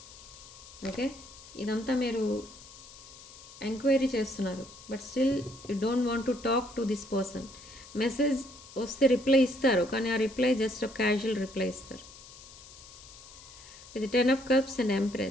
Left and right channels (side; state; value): left; noise; hiss, 18 dB below the sound